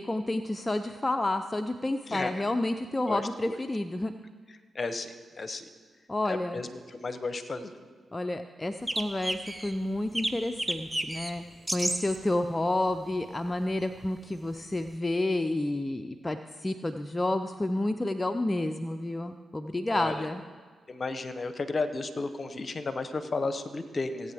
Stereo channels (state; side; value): normal; both; correlation 0.96